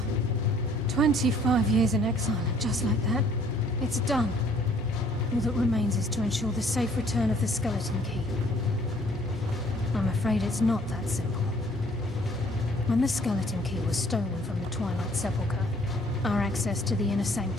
25 years in exile, and just like that, it's done. All that remains is to ensure the safe return of the skeleton key. I'm afraid it's not that simple. When the skeleton key was stolen from the Twilight Sepulchre, our access to the inner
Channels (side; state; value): both; normal; correlation 0.60